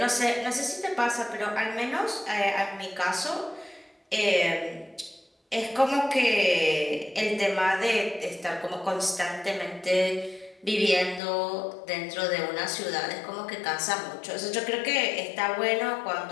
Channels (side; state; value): right; drops out; at 11.2 s